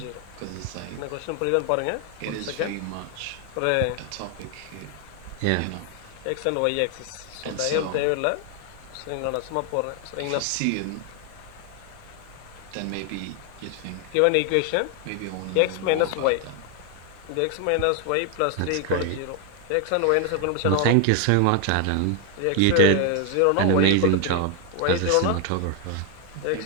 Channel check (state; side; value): different; both; correlation 0.00